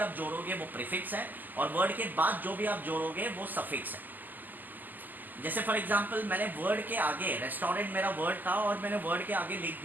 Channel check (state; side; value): late; left; 0.086 ms